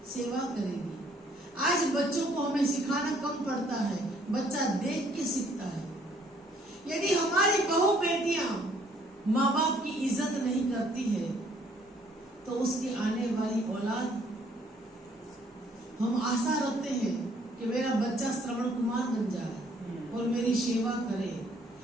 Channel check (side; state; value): both; normal; correlation 0.63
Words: सेवा करेगी। आज बच्चों को हमें सिखाना कम पड़ता है, बच्चा देख के सीखता है। यदि हमारी बहू बेटियां माँ बाप की इज्जत नहीं करती है तो उसकी आने वाली औलाद, हम आशा रखते हैं कि मेरा बच्चा श्रवण कुमार बन जाए और मेरी सेवा करे,